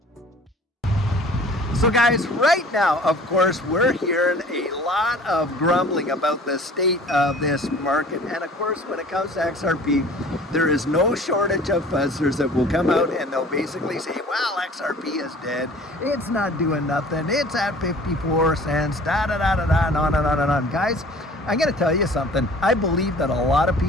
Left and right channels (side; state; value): both; normal; correlation 0.48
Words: So guys, right now, of course, we're hearing a lot of grumbling about the state of this market. And of course, when it comes to XRP, there is no shortage of fuzzers that will come out and they'll basically say, well, XRP is dead. It's not doing nothing. It's at 54 cents, da-da-da-da-da, and on and on and on. Guys, I'm going to tell you something. I believe that a lot of